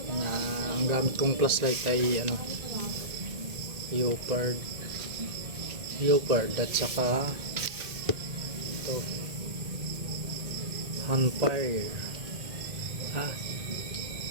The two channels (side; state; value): left; late; 2.0 ms